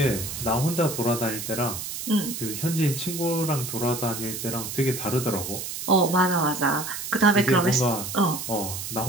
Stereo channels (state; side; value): noise; right; hiss, 7 dB below the sound